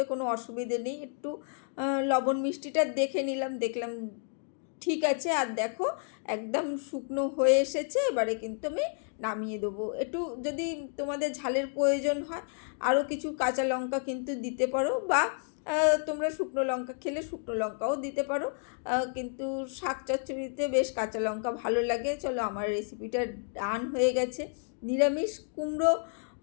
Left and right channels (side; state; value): right; silent; 57 dB below the other